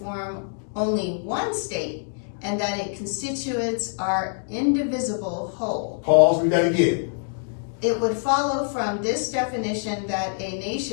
only one state and that its constituents are indivisible whole. Pause, read that again. It would follow from this definition that a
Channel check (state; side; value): silent; right; digital silence